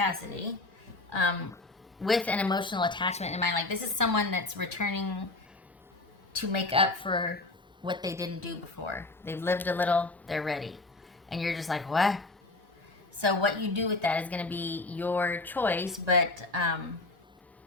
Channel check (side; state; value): right; quieter; 3.1 dB